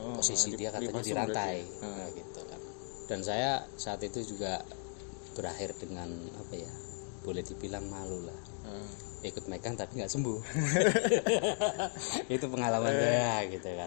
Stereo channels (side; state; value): right; silent; 54 dB below the other